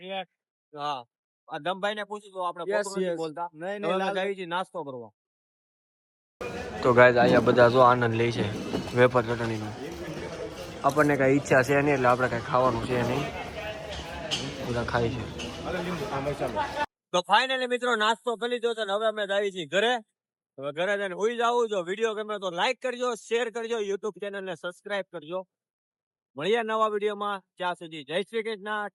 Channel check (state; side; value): identical; both; correlation 1.00